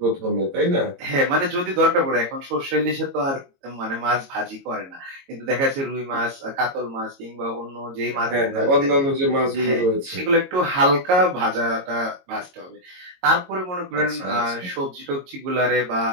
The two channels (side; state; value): left; late; 22 ms